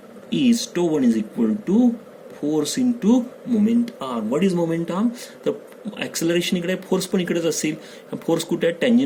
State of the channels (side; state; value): both; identical; correlation 1.00